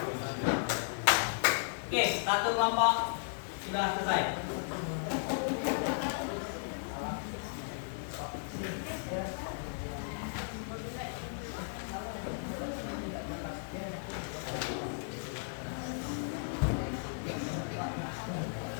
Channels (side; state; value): right; silent; digital silence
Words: Oke, satu kelompok sudah selesai.